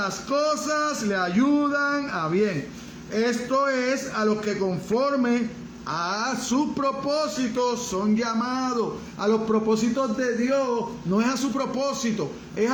cosas le ayudan a bien. Esto es, a los que conforme a sus propósitos son llamados. A los propósitos de Dios, no es a su propósito, es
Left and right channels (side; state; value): both; identical; correlation 1.00